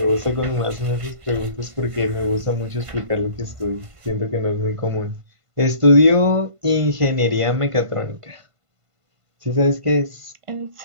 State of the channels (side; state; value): left; late; 1.5 ms